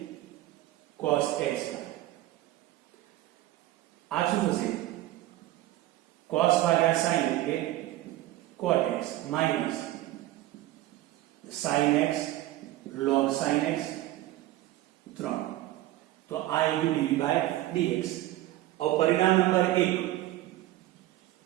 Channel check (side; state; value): left; quieter; 15.7 dB